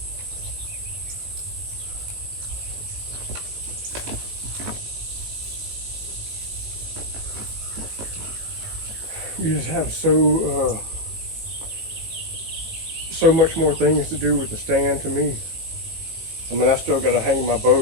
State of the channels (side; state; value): left; late; 19 ms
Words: You just have so much more things to do with the stand to me. I mean, I still got to hang my bow